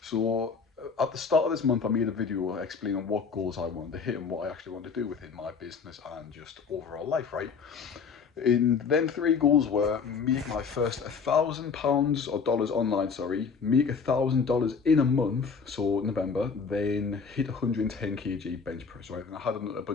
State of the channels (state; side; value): quieter; right; 5.6 dB